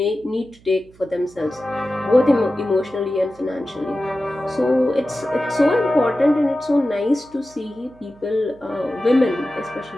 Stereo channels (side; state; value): right; noise; hum, 27 dB below the sound